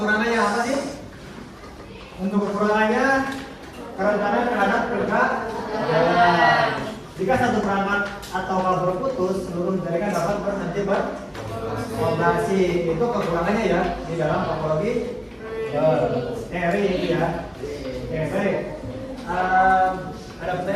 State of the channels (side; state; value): both; identical; correlation 1.00